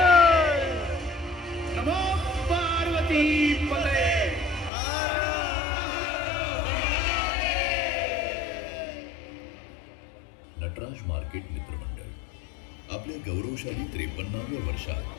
नमो पार्वती पते. नटराज मार्केट मित्रमंडळ आपल्या गौरवशाली 53व्या वर्षात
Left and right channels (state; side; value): drops out; right; at 4.7 s